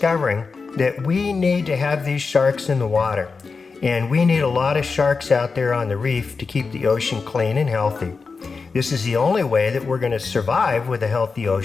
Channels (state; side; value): quieter; right; 4.6 dB